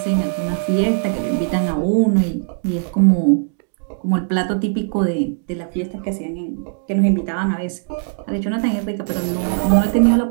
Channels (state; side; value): silent; left; digital silence